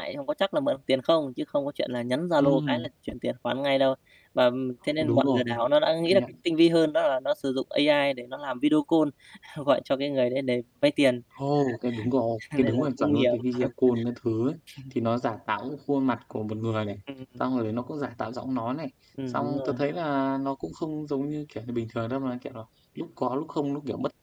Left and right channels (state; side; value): identical; both; correlation 1.00